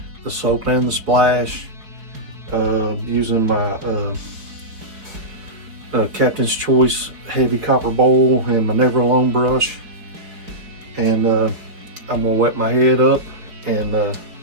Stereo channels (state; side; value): late; left; 4.4 ms